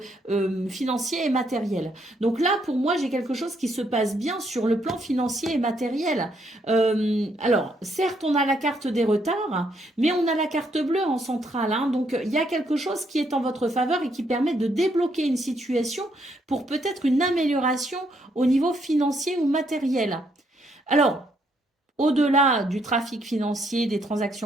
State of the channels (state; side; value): normal; both; correlation 0.73